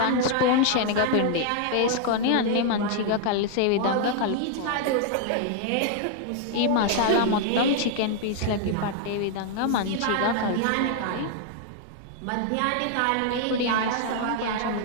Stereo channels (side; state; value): both; different; correlation 0.00